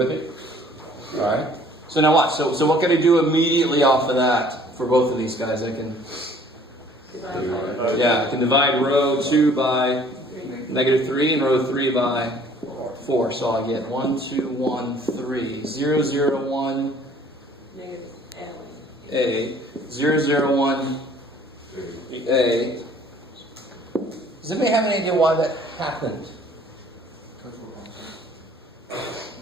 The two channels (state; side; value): normal; both; correlation 0.55